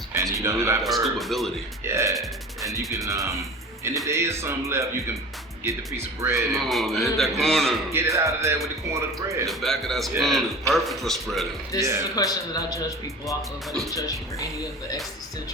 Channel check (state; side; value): normal; both; correlation 0.37